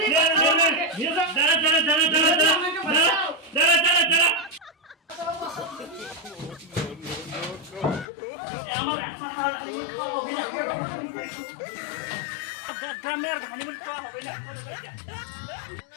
নিয়ে যা দাঁড়া দাঁড়া দাঁড়া দাঁড়া দাঁড়া দাঁড়া দাঁড়া আমার গ্রামের হানিমুন খাওয়া হবে না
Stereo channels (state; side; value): drops out; right; at 8.1 s